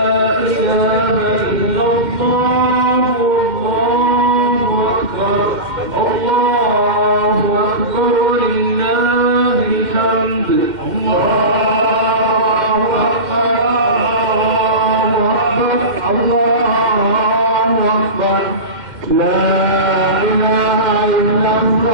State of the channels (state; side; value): late; left; 2.1 ms